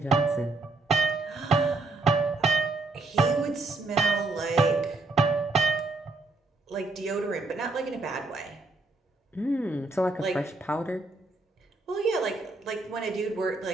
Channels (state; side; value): quieter; left; 3.3 dB